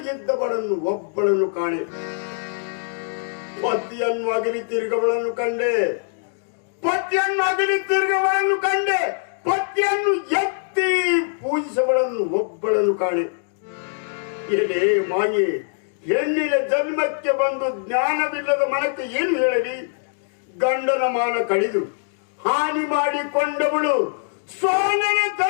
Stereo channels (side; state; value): right; silent; digital silence